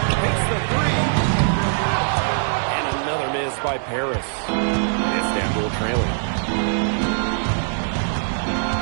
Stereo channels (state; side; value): silent; left; 60 dB below the other